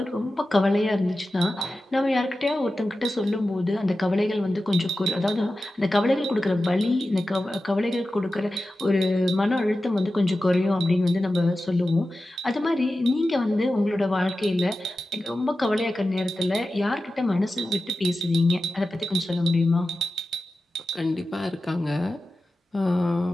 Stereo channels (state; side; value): normal; both; correlation 0.93